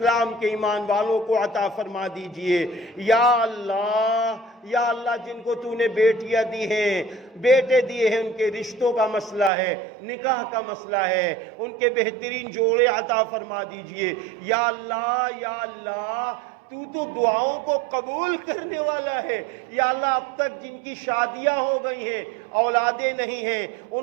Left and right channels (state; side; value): drops out; left; at 9.5 s